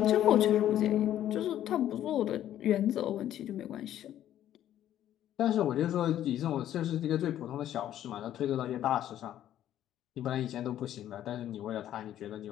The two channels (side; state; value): right; quieter; 11.8 dB